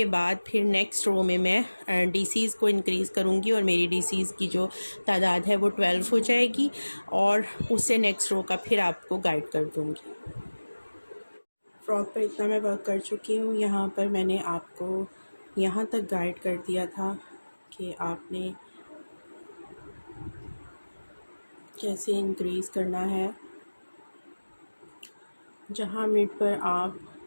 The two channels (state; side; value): inverted; both; correlation -1.00